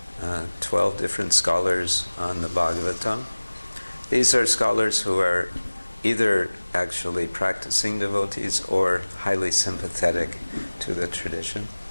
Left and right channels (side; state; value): both; inverted; correlation -1.00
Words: 12 different scholars on the Bhagavatam. These are scholars who are either actually practicing devotees or highly sympathetic to the tradition.